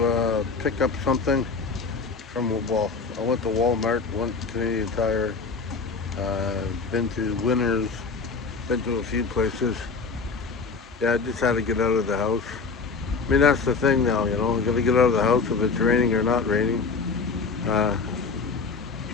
pick up something from, well, I went to Walmart, went to Canadian Tire, been to Winners, been to a few places. Yeah, I just had to get out of the house. I mean, that's the thing now, you know, I gotta get out of the house if it's raining or not raining,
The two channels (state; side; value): quieter; right; 4.7 dB